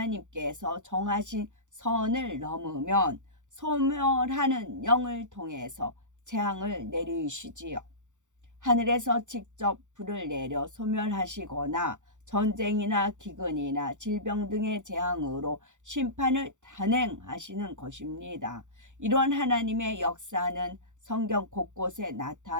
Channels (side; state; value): left; late; 0.85 ms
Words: 정하신 선을 넘으면 소멸하는 영을 통해서 재앙을 내리시지요. 하늘에서 직접 불을 내려 소멸하시거나 전쟁이나 기근이나 질병 등의 재앙으로 심판을 단행하시는 것입니다. 이런 하나님의 역사는 성경 곳곳에